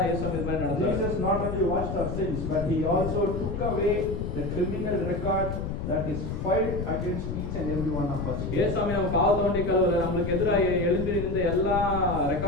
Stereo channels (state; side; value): noise; left; rumble, 4 dB below the sound